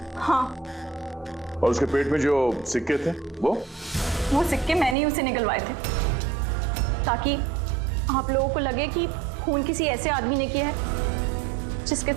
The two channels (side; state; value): left; drops out; at 5.0 s